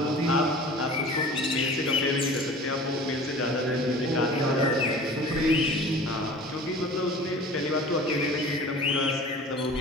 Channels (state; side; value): normal; both; correlation 0.42